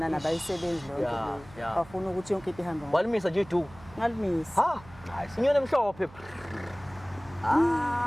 abayisebenzi lonke Yeah. bafuna ukuthi yonke into ihambe. Walimisa nje idu. Ngalimisa. Inyoni emhlophe.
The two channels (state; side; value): noise; right; hum, 21 dB below the sound